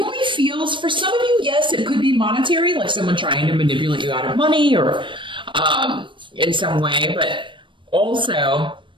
feels, for some of you, yes, it could be monetary, like someone trying to manipulate you out of money or in some way, but also,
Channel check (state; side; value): late; left; 0.24 ms